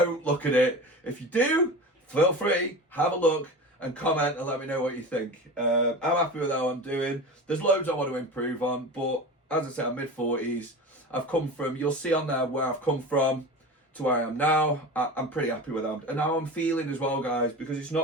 look at it. If you do, feel free, have a look and comment and let me know what you think. I'm happy with how I'm doing. There's loads I want to improve on, but as I said, I'm mid-40s. I've come from, you'll see on there where I've come from to where I am now. I'm pretty happy with that. And how I'm feeling as well, guys, because it's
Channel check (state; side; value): normal; both; correlation 0.31